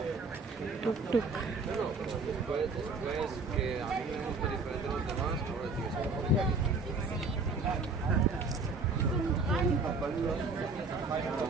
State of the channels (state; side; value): quieter; left; 3.8 dB